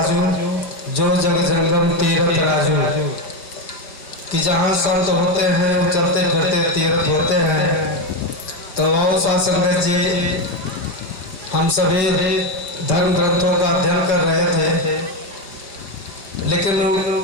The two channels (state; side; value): late; right; 4.8 ms